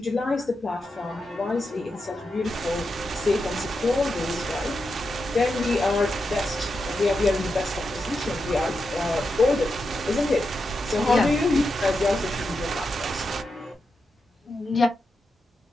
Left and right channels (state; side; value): normal; both; correlation 0.87